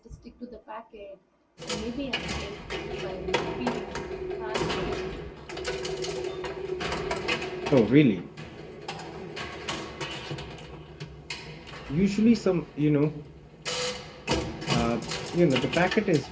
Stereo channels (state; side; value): identical; both; correlation 1.00